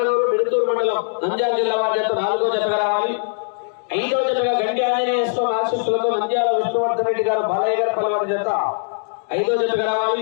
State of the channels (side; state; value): right; silent; 65 dB below the other